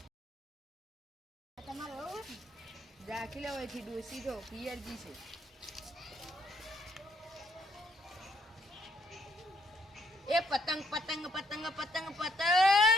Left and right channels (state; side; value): normal; both; correlation 0.70